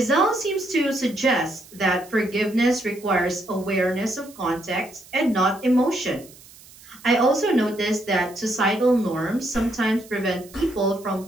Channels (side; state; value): right; noise; hiss, 22 dB below the sound